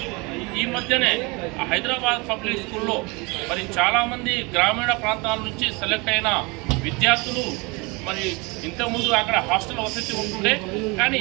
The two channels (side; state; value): left; quieter; 27.4 dB